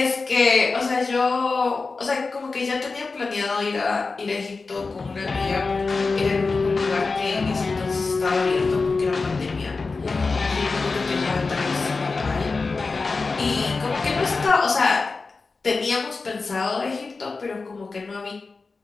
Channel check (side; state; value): right; quieter; 4.1 dB